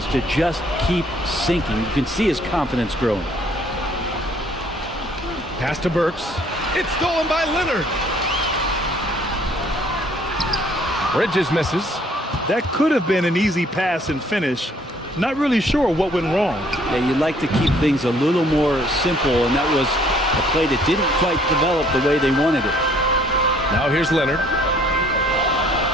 to just keep sinking. You can see his confidence growing. Pass to Burks. It's stolen by Leonard. Bridges misses. That could have been an easy pass and finish. Not really sure what went wrong. Yeah, you'd like to keep things a little more simple, and that was a play that didn't quite develop the way they wanted it. Now here's Leonard.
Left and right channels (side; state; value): both; normal; correlation 0.61